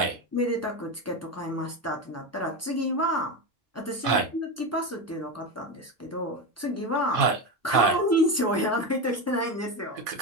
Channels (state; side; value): normal; both; correlation 0.17